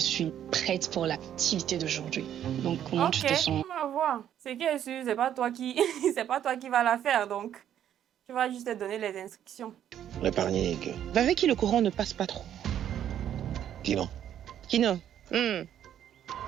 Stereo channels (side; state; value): left; quieter; 10.3 dB